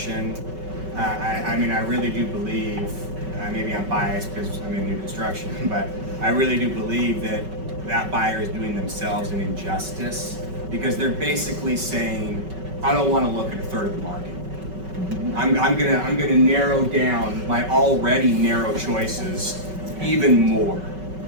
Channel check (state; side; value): late; left; 5.3 ms